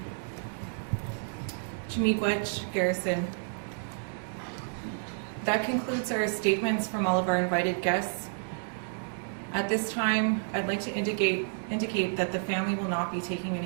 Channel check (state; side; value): silent; left; 58 dB below the other